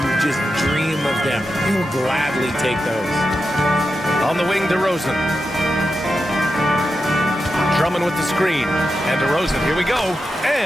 You just dream of them. You'll gladly take those. On the wing, DeRozan. Drummond with the screen. And DeRozan, here we go.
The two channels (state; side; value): normal; both; correlation 0.89